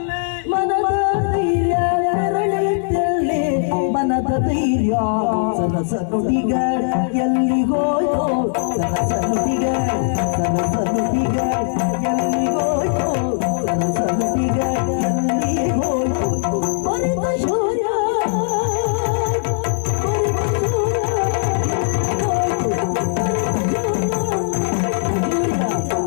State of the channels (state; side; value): silent; right; 60 dB below the other